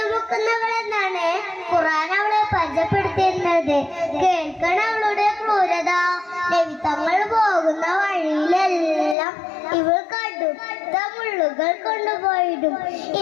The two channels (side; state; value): right; drops out; at 9.2 s